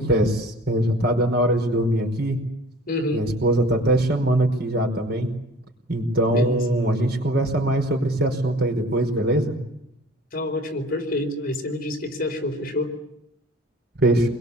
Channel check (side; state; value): both; normal; correlation 0.46